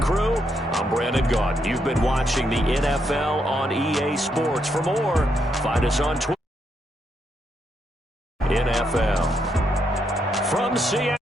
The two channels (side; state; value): both; normal; correlation 0.78